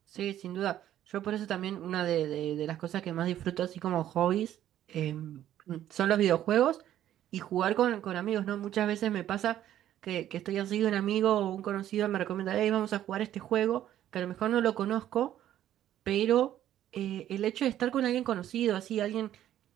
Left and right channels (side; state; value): left; quieter; 11.9 dB